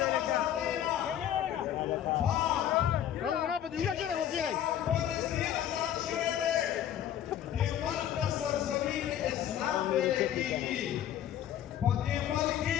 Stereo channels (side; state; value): right; quieter; 10.7 dB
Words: Kalau kenapa juga kena kira.